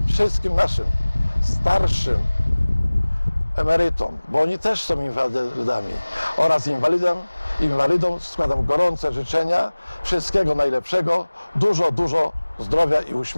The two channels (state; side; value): inverted; both; correlation -1.00